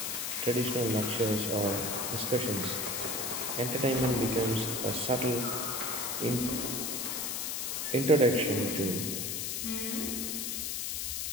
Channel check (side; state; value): left; noise; hiss, 2 dB below the sound